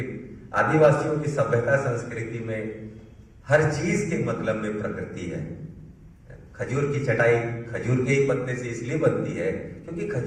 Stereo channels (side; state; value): both; identical; correlation 1.00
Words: आदिवासियों की सभ्यता संस्कृति में हर चीज के मतलब में प्रकृति है। खजूर की चटाई खजूर के ही पत्ते से इसलिए बनती है क्योंकि